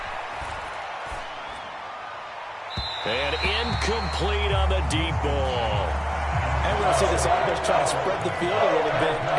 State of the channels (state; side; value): identical; both; correlation 1.00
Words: And incomplete on the deep ball. And we're going to see this offense try to spread the field a little bit